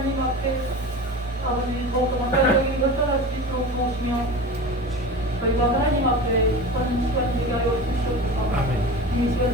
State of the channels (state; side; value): normal; both; correlation 0.31